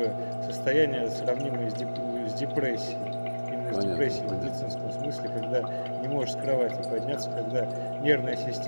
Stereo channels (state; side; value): inverted; both; correlation -1.00